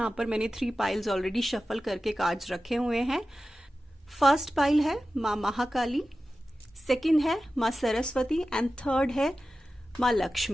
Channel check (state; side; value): normal; both; correlation 0.94